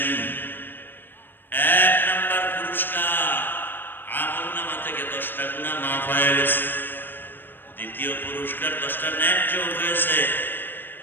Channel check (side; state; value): right; late; 0.095 ms